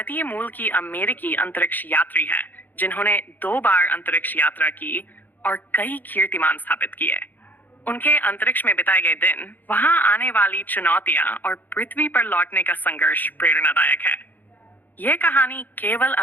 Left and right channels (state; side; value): late; right; 0.086 ms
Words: मूल की अमेरिकी अंतरिक्ष यात्री हैं, जिन्होंने 2 बार अंतरिक्ष यात्रा की और कई कीर्तिमान स्थापित किए। उनके अंतरिक्ष में बिताए गए दिन, वहां आने वाली चुनौतियां और पृथ्वी पर लौटने का संघर्ष प्रेरणादायक है। यह कहानी केवल